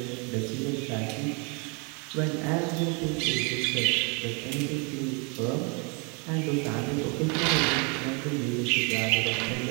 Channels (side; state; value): left; quieter; 33.3 dB